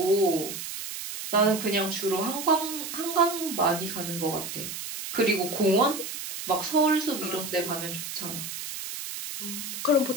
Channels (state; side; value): noise; right; hiss, 7 dB below the sound